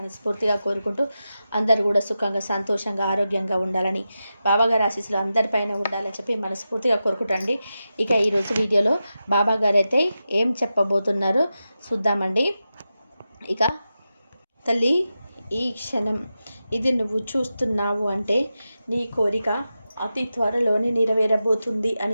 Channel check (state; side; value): inverted; both; correlation -0.91